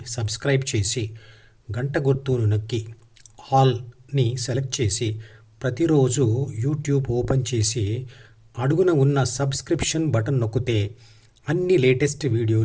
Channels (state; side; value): identical; both; correlation 1.00